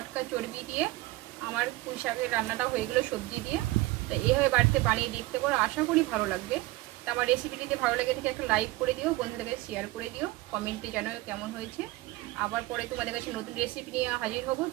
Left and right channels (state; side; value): quieter; left; 19.1 dB